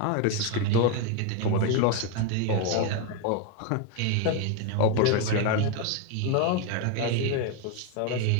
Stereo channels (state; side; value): different; both; correlation 0.02